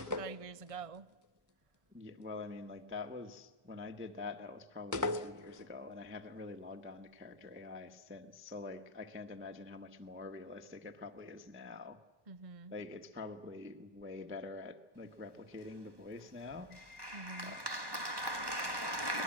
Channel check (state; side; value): late; left; 1.2 ms